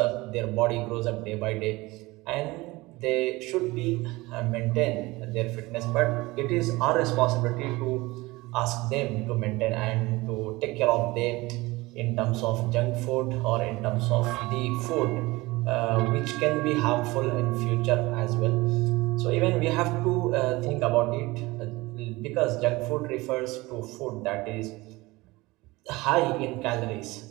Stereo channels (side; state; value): left; quieter; 21.3 dB